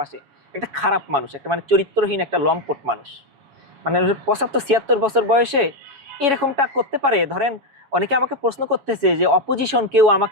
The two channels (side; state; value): left; late; 7.2 ms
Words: একটা খারাপ মানুষ, একটা মানে চরিত্রহীন একটা লম্পট মানুষ, মানে 75-76 বছর বয়সে এরকমটা করতে পারে। ধরেন অনেকে আমাকে প্রশ্ন করতেছে যে অপোজিশন কেউ